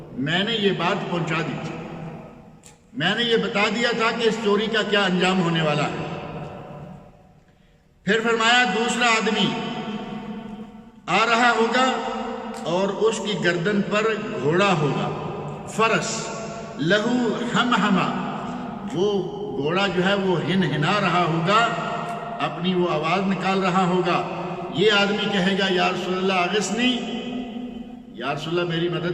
میں نے یہ بات پہنچا دی تھی، میں نے یہ بتا دیا تھا کہ اس چوری کا کیا انجام ہونے والا ہے۔ پھر فرمایا دوسرا آدمی آ رہا ہوگا اور اس کی گردن پر گھوڑا ہوگا، فرس، لہو ہم، وہ گھوڑا جو ہے وہ ہنا رہا ہوگا، اپنی وہ آواز نکال رہا ہوگا۔ یہ آدمی کہے گا یا رسول اللہ اغثنی، یا رسول اللہ میری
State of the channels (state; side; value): identical; both; correlation 1.00